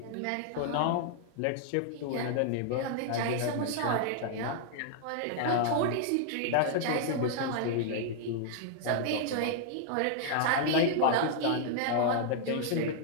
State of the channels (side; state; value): both; different; correlation -0.01